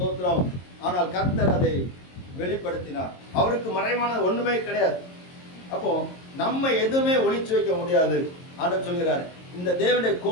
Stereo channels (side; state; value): right; late; 22 ms